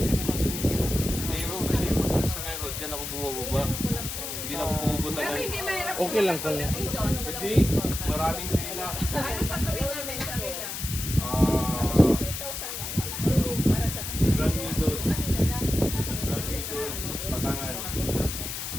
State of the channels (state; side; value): noise; left; hiss, 5 dB below the sound